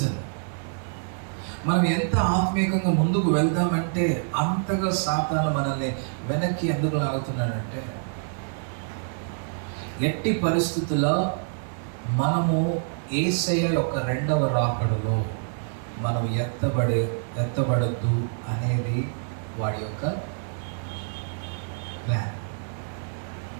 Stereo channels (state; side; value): silent; left; digital silence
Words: మనం ఎంత ఆత్మీయంగా ముందుకు వెళ్దామంటే అంతగా సాతాను మనల్ని వెనక్కి ఎందుకు లాగుతున్నాడంటే, ఎట్టి పరిస్థితుల్లో మనము యేసయ్య యొక్క రెండవ రాకడలో మనం ఎత్తబడద్దు అనేది వాడి యొక్క ప్లాన్.